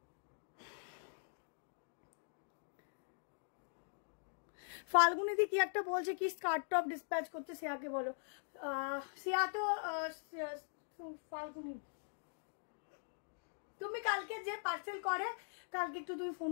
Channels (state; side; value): silent; right; digital silence